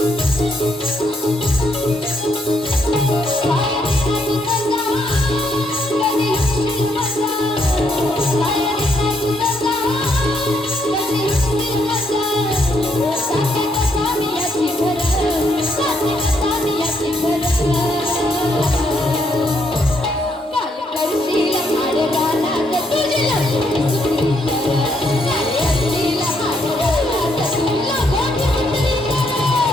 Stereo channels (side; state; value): both; normal; correlation 0.75